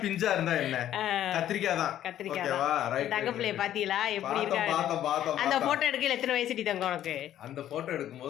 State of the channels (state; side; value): quieter; right; 11.7 dB